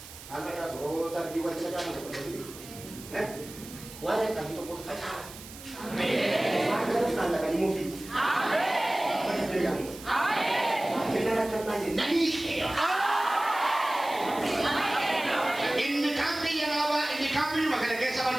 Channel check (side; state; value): right; noise; hiss, 16 dB below the sound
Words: Anda ya suruh saya diwajib macam mana? Orang kata tu pun kacau. Amin. Orang kata kali movie. Amin. Amin. Kita nak nanya nani. Ini kami yang awak, ini kami makanya kesabaran